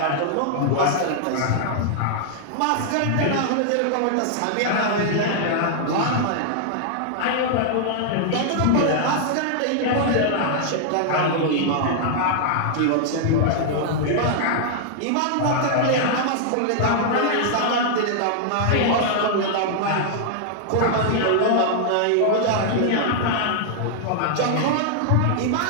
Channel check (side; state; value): both; different; correlation -0.01